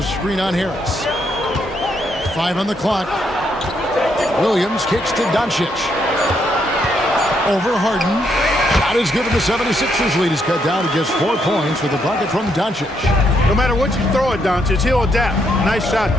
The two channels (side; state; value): both; normal; correlation 0.75